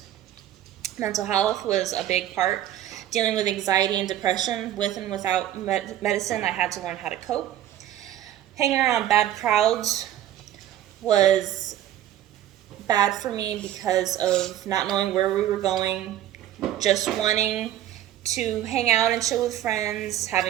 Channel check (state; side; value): quieter; left; 12.2 dB